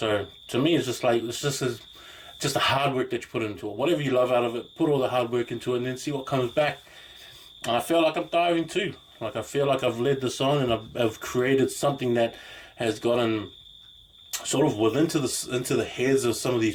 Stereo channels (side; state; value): both; identical; correlation 1.00